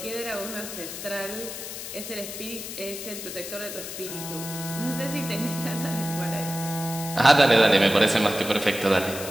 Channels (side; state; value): left; noise; hiss, 8 dB below the sound